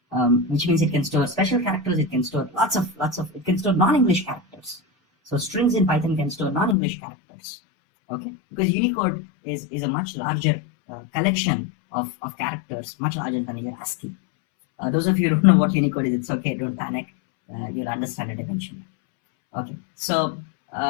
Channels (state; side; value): drops out; right; at 6.8 s